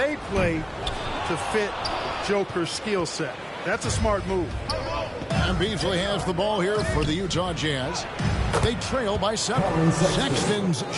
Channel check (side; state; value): both; identical; correlation 1.00